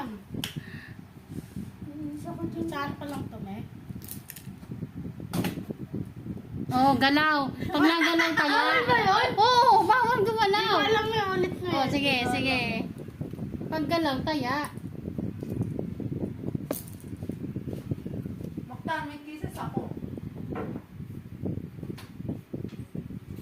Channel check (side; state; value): both; identical; correlation 1.00